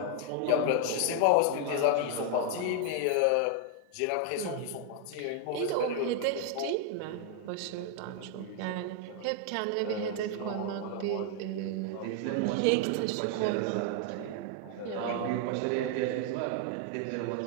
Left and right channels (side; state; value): both; different; correlation 0.00